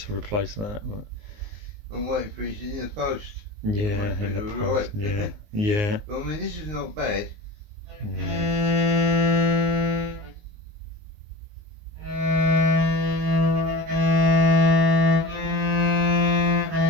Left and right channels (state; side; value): late; left; 19 ms